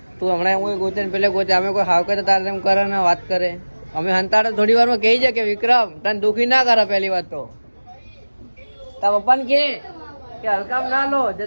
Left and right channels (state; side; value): inverted; both; correlation -1.00